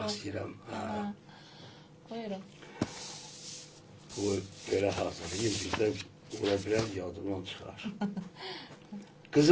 istəyirəm. Buyurun. Bu belə hazırlayayım, bizdən ola bilər yadımdan çıxar.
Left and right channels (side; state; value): both; identical; correlation 1.00